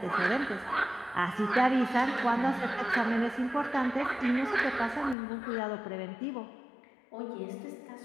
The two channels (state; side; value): drops out; right; at 5.2 s